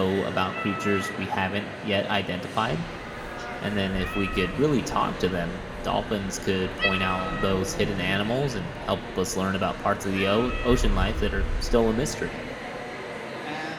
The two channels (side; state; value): both; identical; correlation 1.00